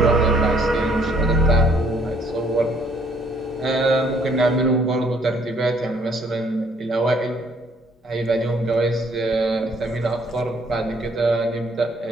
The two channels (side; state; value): both; normal; correlation 0.63